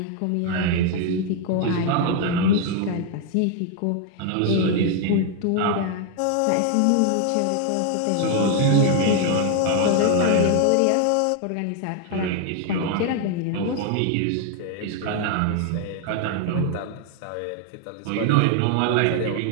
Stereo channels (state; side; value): different; both; correlation 0.01